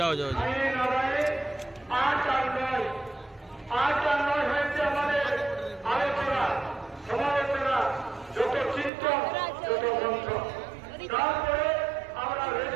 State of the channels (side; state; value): left; drops out; at 8.9 s